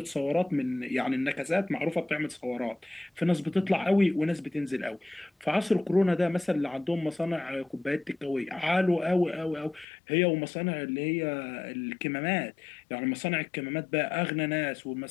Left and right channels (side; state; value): right; drops out; at 9.9 s